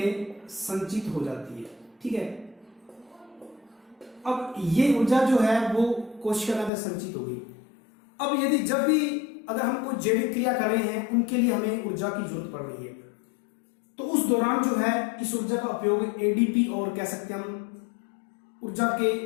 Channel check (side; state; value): right; drops out; at 6.7 s